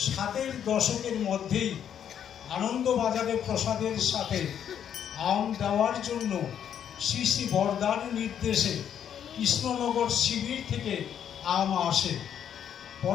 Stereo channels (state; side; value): quieter; right; 9.1 dB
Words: 7 দশকের মধ্যেই আনন্দবাজারে প্রসাদের সাথে আম দেওয়ার জন্য শ্রী শ্রী বরদার নির্দেশে কৃষ্ণনগর শিবির থেকে আম আসে।